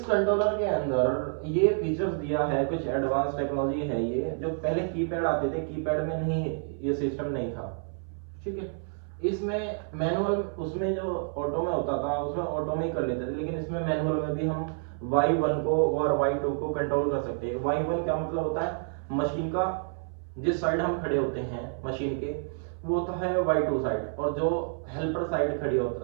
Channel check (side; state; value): left; silent; 59 dB below the other